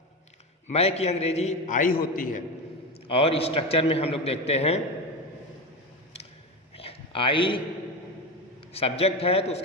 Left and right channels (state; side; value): normal; both; correlation 0.20